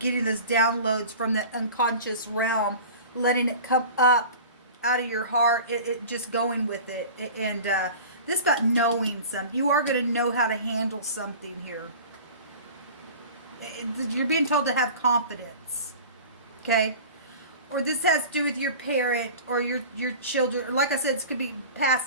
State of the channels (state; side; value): inverted; both; correlation -0.38